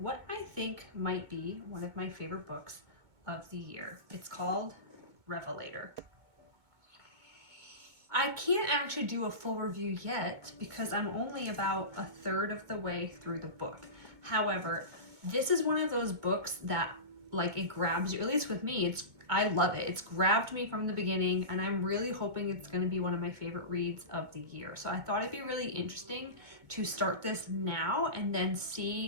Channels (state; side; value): late; left; 2.2 ms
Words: I think might be one of my favorite books of the year. It's called Revelator. I can't actually do a full review yet because I'm only about a third of the way through the book. However, this is one of those books that it grabs you, at least with me. I love it. It's grabbed me from the beginning, and I'm really hoping it's going to be one of my favorite reads of the year. So I thought it'd be really interesting to start this now and then